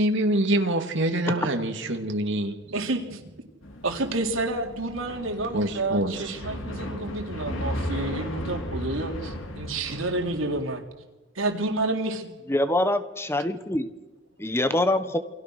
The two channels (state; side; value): normal; both; correlation 0.37